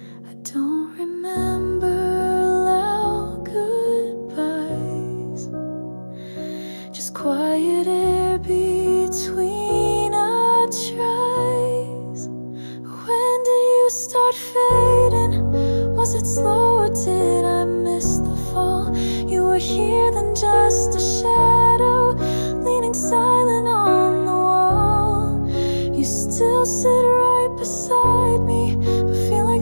I don't remember loud goodbyes, just quiet air between our tries. When did you start fading? Was it slow or did I miss the fall? You were here then just a shadow, leaning silent on the wall. You still sit right beside me, but feel like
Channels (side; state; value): both; inverted; correlation -1.00